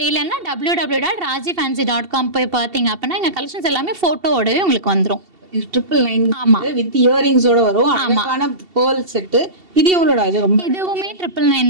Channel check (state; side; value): late; left; 2.7 ms